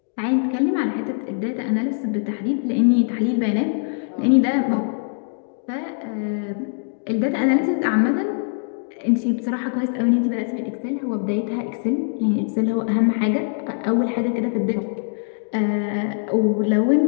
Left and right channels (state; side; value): silent; right; 64 dB below the other